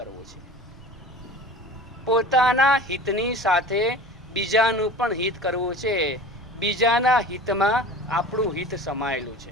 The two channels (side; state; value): both; normal; correlation 0.39